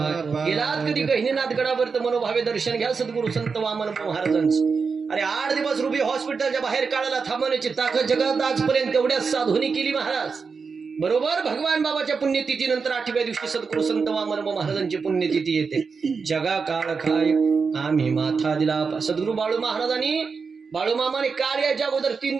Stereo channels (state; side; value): quieter; left; 5.2 dB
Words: गेलात कधी गहिनीनाथ गडावर तर मनोभावे दर्शन घ्या सद्गुरु संत वामन महाराजांचं. अरे 8 दिवस रुबी हॉस्पिटलच्या बाहेर काढायला थांबवण्याची ताकद जगात आजपर्यंत तेवढ्याच साधूनी केली महाराज. बरोबर भगवान बाबाच्या पुण्यतिथीनंतर 8व्या दिवशी सद्गुरु संत वामन महाराजांची पुण्यतिथी येते. जगा काळ खाय आम्ही माथा दिला. सद्गुरु बाळू महाराजांनी बाळू मामाने काळ याच्या अगोदर 3